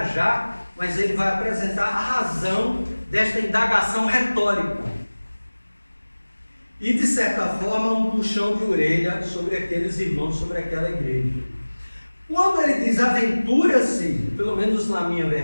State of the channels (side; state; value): both; inverted; correlation -1.00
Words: mas ele vai apresentar a razão desta indagação retórica. E, de certa forma, um puxão de orelha sobre aqueles irmãos, sobre aquela igreja. Quando ele diz aventura-se, pelo menos na minha